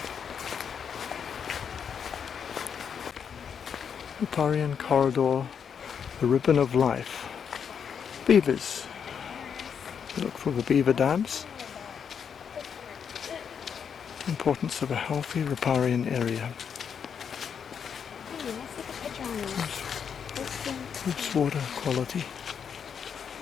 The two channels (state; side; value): quieter; right; 7.3 dB